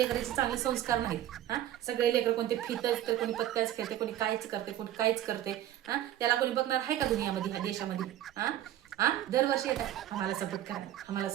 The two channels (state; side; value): quieter; left; 12.6 dB